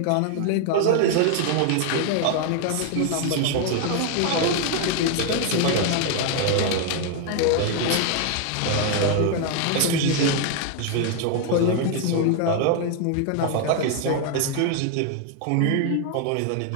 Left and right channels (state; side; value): different; both; correlation 0.00